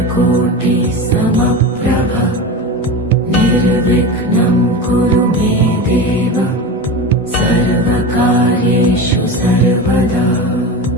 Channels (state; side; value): normal; both; correlation 0.25